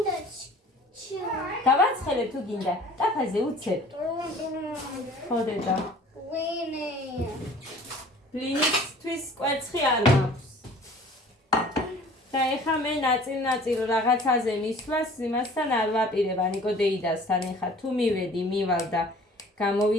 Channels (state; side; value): normal; both; correlation 0.48